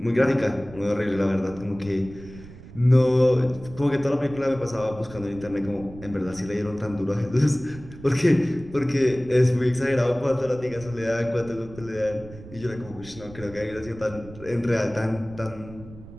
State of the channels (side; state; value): right; noise; rumble, 17 dB below the sound